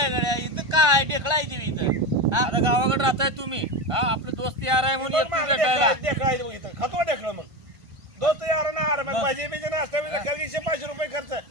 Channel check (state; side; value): late; left; 1.5 ms